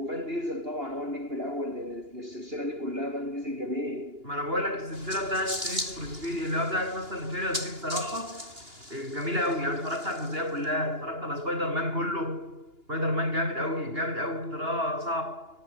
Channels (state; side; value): late; left; 2.9 ms